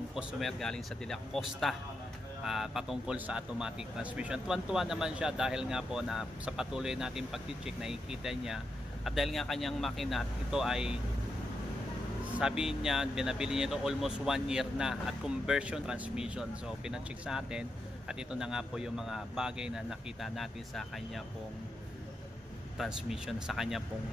customer galing sa Dela Costa patungkol sa automatic transmission. Tuwan-tuwa naman siya dahil nga po na sa patuloy natin pag-check nakikita niya, at dahil nga kanyang makina ito ay sabi niya binabili niya ito almost 1 year na at conversion transmission. So pina-check sa atin at ito na nga po yung mga bagay na nakita natin sa kanya pong transmission, sa kanya pong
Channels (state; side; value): normal; both; correlation 0.85